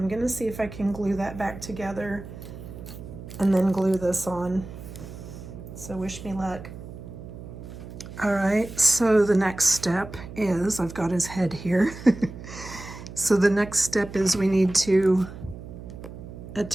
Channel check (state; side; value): noise; right; hum, 13 dB below the sound